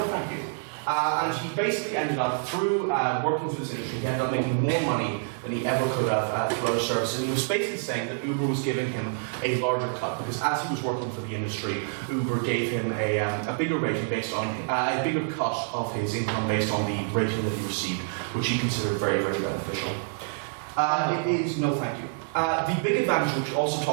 thank you. And he basically ended up, through working through this industry, he ended up making more money than he ever could have through other services. And he was basically saying that Uber was giving him a larger cut, because as he was working for the industry, Uber gave him a bigger rating based on, a bigger cut of his income based on the rating that he received, which he considered very, very beneficial. It is, no thank you. The big advantage, which we're also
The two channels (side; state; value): left; silent; digital silence